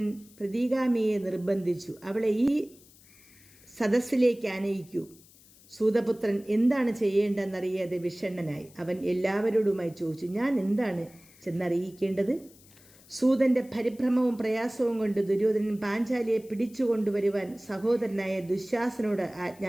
പ്രതിഗാമിയെ നിർബന്ധിച്ചു. അവളെ ഈ സദസ്സിലേക്ക് ആനയിക്കൂ. സൂതപുത്രൻ എന്താണ് ചെയ്യേണ്ടതെന്നറിയാതെ വിഷണ്ണനായി. അവൻ എല്ലാവരോടുമായി ചോദിച്ചു, ഞാൻ എന്താണ് ചെന്നറിയിക്കേണ്ടത്? സൂതൻ്റെ പരിഭ്രമവും പ്രയാസവും കൊണ്ട് ദുര്യോധനൻ പാഞ്ചാലിയെ പിടിച്ചുകൊണ്ടുവരുവാൻ സഹോദരനായ ദുശ്ശാസനോട്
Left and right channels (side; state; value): left; noise; hiss, 25 dB below the sound